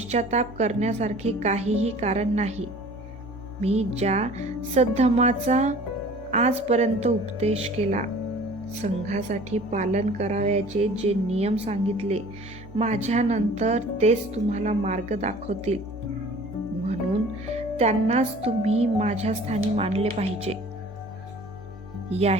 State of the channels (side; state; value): both; normal; correlation 0.47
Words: करण्यासारखे काहीही कारण नाही. मी ज्या सद्धर्माचा आजपर्यंत उपदेश केला, संघासाठी पालन करावयाचे जे नियम सांगितले, माझ्यानंतर तेच तुम्हाला मार्ग दाखवतील. म्हणून त्यांनाच तुम्ही माझ्या स्थानी मानले पाहिजे.